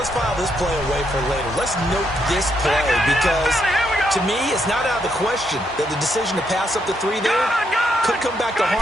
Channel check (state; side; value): normal; both; correlation 0.77